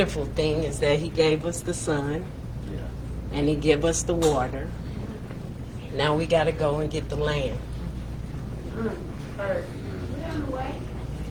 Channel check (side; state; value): both; identical; correlation 1.00